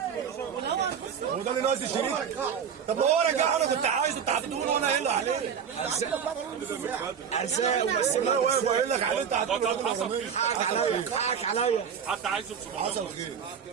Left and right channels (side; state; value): left; quieter; 7.4 dB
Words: هو ده اللي ناقص الشريط. طب ما هو رجع. انا كنت عايزه بتاع الدهون وانا قايل له عليه. ارزاق وبس. انا واقف وقايل لك عليه. انت حقك عليا. حد عايزه ب 750.